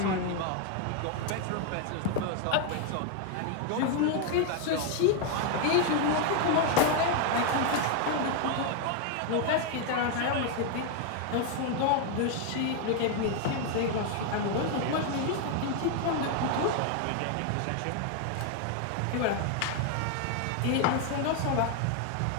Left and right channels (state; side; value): different; both; correlation 0.01